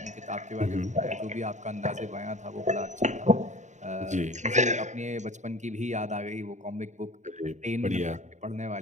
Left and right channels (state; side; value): late; left; 0.34 ms